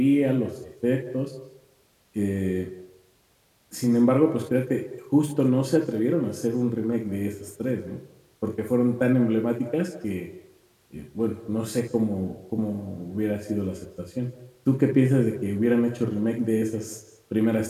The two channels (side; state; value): both; identical; correlation 1.00